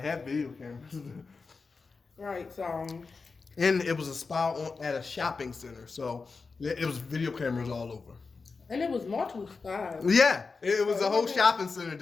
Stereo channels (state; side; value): quieter; right; 4.5 dB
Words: had video cameras. Right, so. And it was a spa at a shopping center, so it was video cameras all over. And it was multiple spas. Yeah, it was a whole shopping center